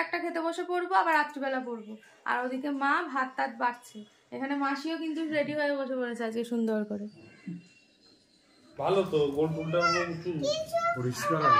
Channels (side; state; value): both; identical; correlation 1.00